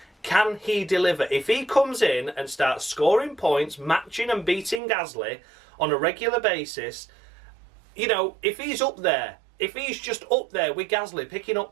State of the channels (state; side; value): drops out; left; at 4.8 s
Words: Can he deliver? If he comes in and starts scoring points, matching and beating Gasly on a regular basis, you know, if he's up there, if he's just up there with Gasly picking